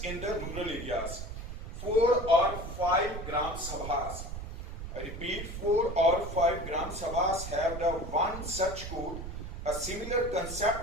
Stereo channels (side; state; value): right; noise; rumble, 8 dB below the sound